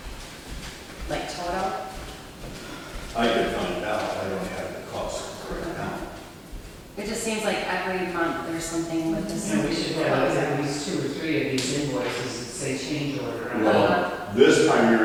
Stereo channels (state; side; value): identical; both; correlation 1.00